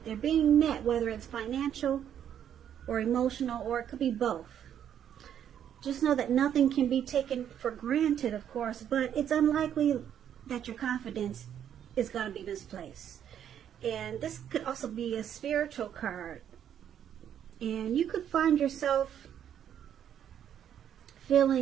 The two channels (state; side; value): quieter; left; 9.6 dB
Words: they're being met, whether it's financial or emotional, or it could be both. Just know that nothing can be taken for granted, of course, but it's unlikely that your confidence is going to be misplaced. And this could also be a spiritual card. And you could find yourself